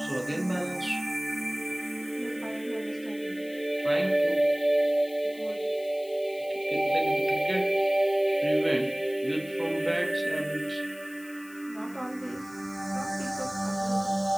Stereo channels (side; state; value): left; noise; hiss, 23 dB below the sound